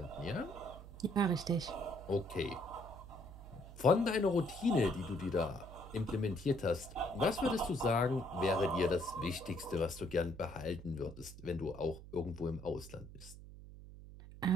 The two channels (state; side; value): noise; right; hum, 15 dB below the sound